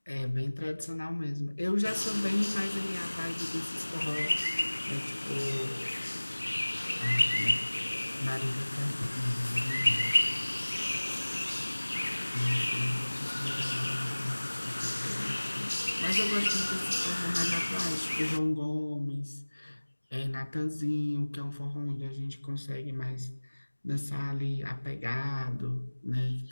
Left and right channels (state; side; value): inverted; both; correlation -1.00